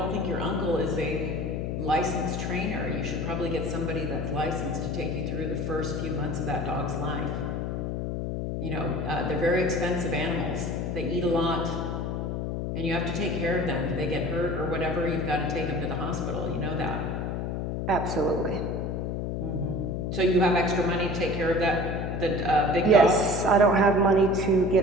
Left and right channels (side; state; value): left; noise; hum, 2 dB below the sound